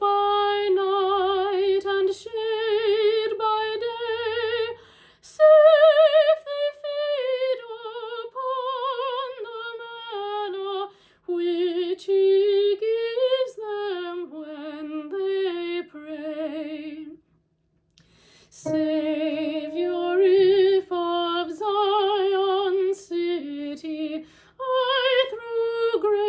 night and shade by day. Safe they feed upon the manna which he gives them when they pray. Savior, if of Zion city I through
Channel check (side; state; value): both; identical; correlation 1.00